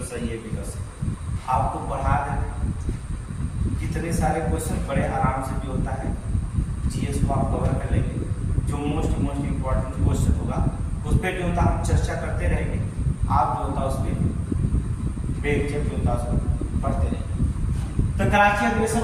सही है, विकल्प सही। आपको पढ़ा दें कितने सारे क्वेश्चन बड़े आराम से जो होता है जीएस को आप कवर कर लेंगे। जो मोस्ट इंपॉर्टेंट क्वेश्चन होगा उस पर जो होता हम चर्चा करते रहेंगे। आप जो होता उस पर बेझिझक जो होता उसको पढ़ते रहेंगे। तो कराची अधिवेशन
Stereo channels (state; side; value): identical; both; correlation 1.00